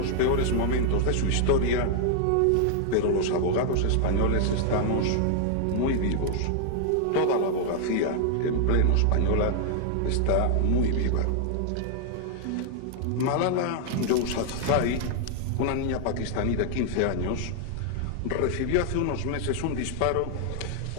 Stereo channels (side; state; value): both; different; correlation 0.00